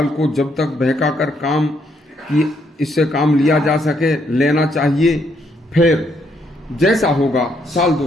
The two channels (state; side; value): normal; both; correlation 0.73